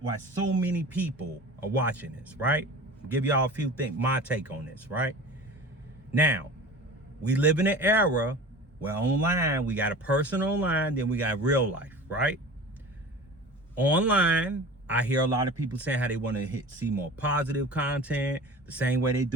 so many people are watching this, right? I'll give y'all a few things, my take on this, right? Now, we live in an era where online, we got a person online, then we got real life, right? Online, I hear a lot of people saying how they want to see more positive content, the same way they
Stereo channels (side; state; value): both; normal; correlation 0.37